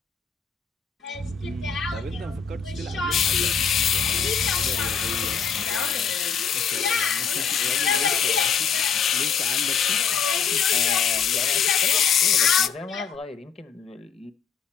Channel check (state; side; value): quieter; right; 6.8 dB